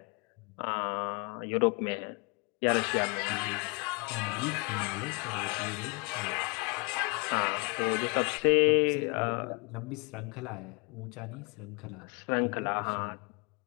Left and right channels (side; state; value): right; quieter; 31.4 dB